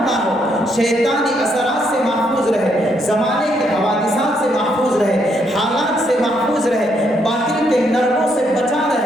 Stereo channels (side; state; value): both; normal; correlation 0.74